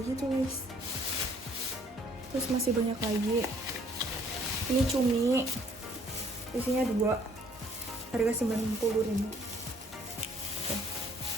gitu guys. Terus masih banyak lagi. Ini cumi, isinya 2, harga 90.000.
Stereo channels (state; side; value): normal; both; correlation 0.62